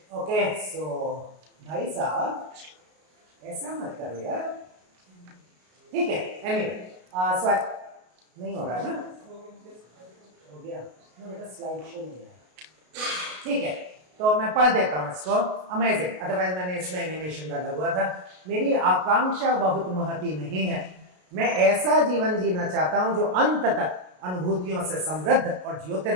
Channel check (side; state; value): left; late; 33 ms